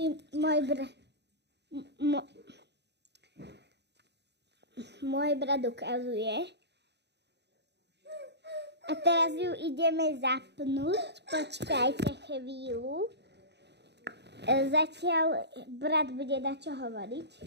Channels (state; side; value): late; left; 0.50 ms